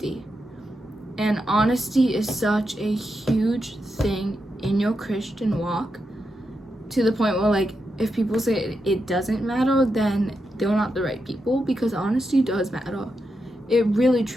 And honesty is such a huge thing in your Christian walk, to the point where, like, if people say it doesn't matter, then they're not the right people, because honesty does matter. It really,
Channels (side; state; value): both; normal; correlation 0.86